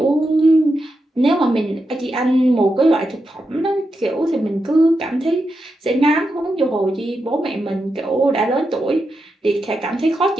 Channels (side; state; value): both; normal; correlation 0.87